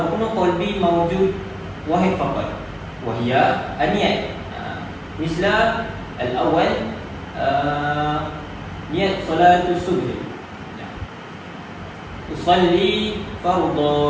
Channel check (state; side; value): identical; both; correlation 1.00